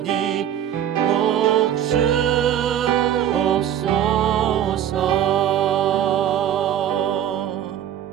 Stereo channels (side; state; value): left; quieter; 10.4 dB